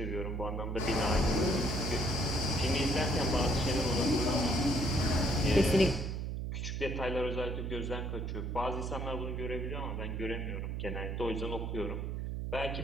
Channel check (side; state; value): right; noise; hum, 3 dB below the sound